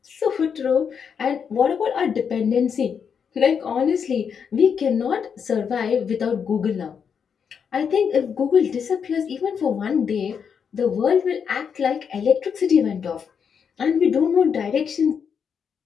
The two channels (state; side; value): quieter; right; 6.9 dB